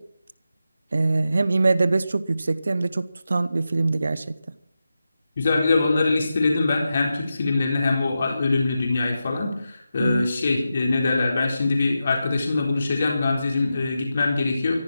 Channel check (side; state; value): both; inverted; correlation -0.90